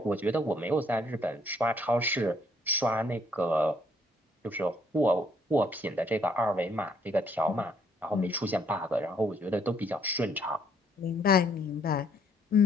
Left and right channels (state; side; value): normal; both; correlation 0.66